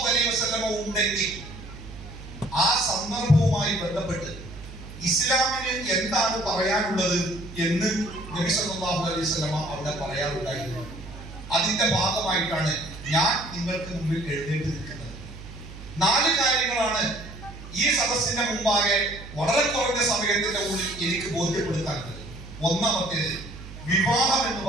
അലൈഹി വസല്ലമ ഉണ്ടെങ്കിൽ ആ സന്ദർഭവുമായി ബന്ധപ്പെട്ട് ഇസ്ലാമിന് എന്താണ് പറയാനുള്ളത് എന്ന് നബി സല്ലല്ലാഹു അലൈഹി വസല്ലമ അവിടെ പറയാറുണ്ടായിരുന്നു. അതിന്റെ ഭാഗമായിട്ടാണ് ഞാൻ നിങ്ങൾക്ക് മുമ്പിൽ എഴുന്നേറ്റ് നിൽക്കുന്നത്. 4 കാര്യങ്ങളാണ് ഈ സദസ്സിന്റെ മുമ്പാകെ വളരെ കുറഞ്ഞ സമയത്തിന്റെ ഉള്ളിൽ എനിക്ക് ബോധ്യപ്പെടുത്താനുള്ളത്. ഒന്നാമത്തേത്, വിവാഹം എന്ന്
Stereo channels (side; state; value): right; noise; hum, 14 dB below the sound